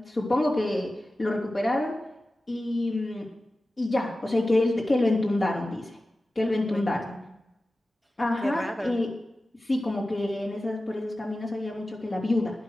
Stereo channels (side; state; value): both; normal; correlation 0.95